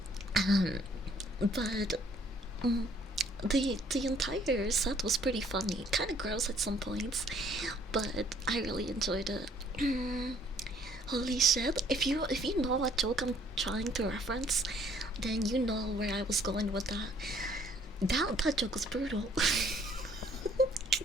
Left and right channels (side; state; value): both; normal; correlation 0.61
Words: But the entire set was pretty funny. Kind of gross at some points, but I really enjoyed it. Holy shit! If you know what joke I'm trying to reference, then you know where I was going with that. That joke was brutal.